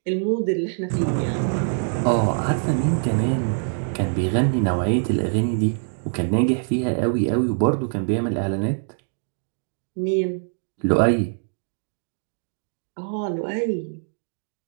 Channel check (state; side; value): silent; left; digital silence